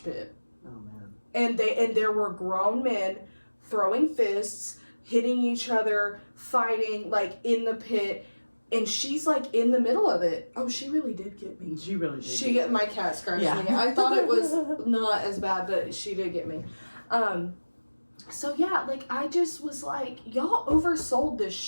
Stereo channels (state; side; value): inverted; both; correlation -1.00